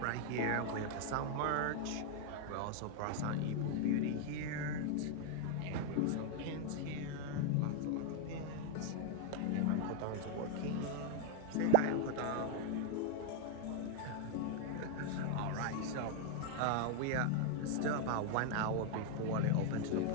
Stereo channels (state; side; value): different; both; correlation 0.00